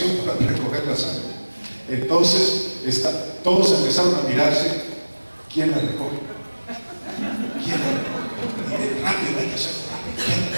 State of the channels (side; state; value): both; inverted; correlation -1.00